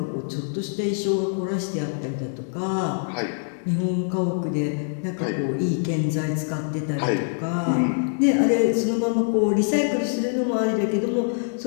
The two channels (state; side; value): silent; right; digital silence